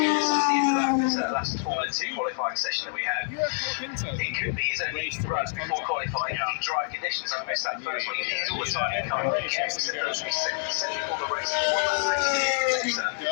That last Formula 2 qualifying session that we had. It could be his only run before qualifying in dry conditions. I missed that first one. He needs all the time he can. He checks it first. He's set before the race.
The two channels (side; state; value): right; silent; digital silence